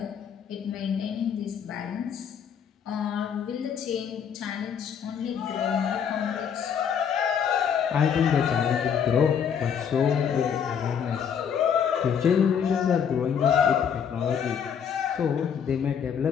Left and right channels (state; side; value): quieter; right; 7.7 dB